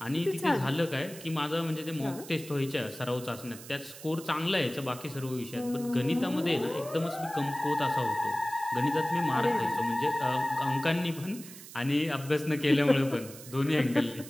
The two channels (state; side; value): noise; right; hiss, 15 dB below the sound